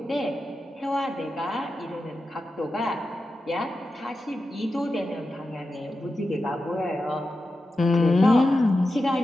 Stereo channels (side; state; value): both; normal; correlation 0.91